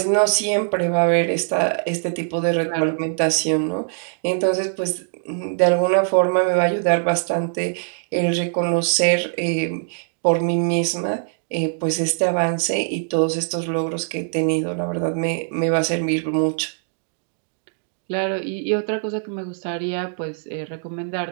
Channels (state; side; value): silent; left; digital silence